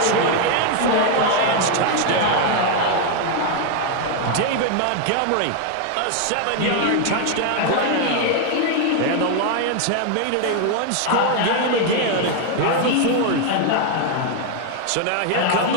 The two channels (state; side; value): different; both; correlation 0.00